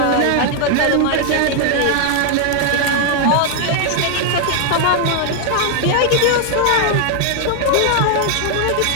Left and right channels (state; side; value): different; both; correlation 0.00